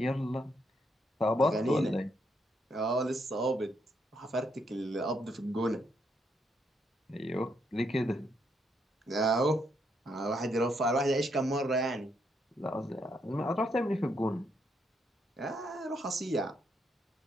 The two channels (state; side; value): normal; both; correlation 0.76